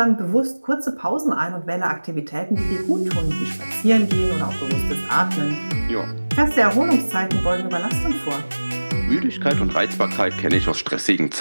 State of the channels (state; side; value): inverted; both; correlation -1.00